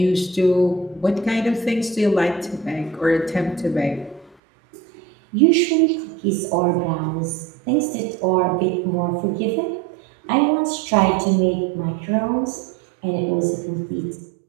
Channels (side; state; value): left; drops out; at 4.4 s